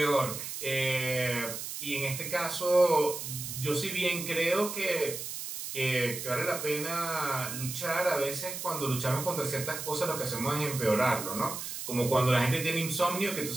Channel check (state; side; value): noise; right; hiss, 7 dB below the sound